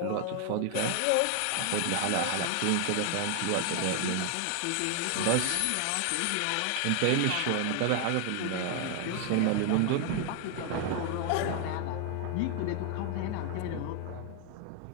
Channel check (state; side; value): different; both; correlation 0.00